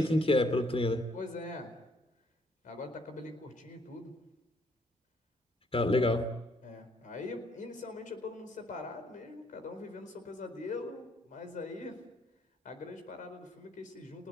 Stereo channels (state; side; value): normal; both; correlation 0.68